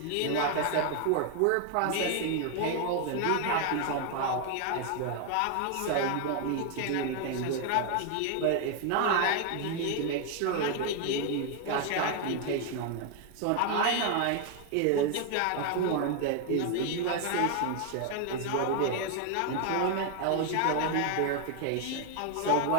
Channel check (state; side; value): different; both; correlation 0.01